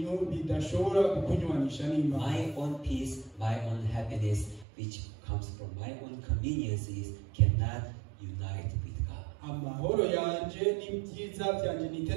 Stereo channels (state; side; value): drops out; left; at 4.7 s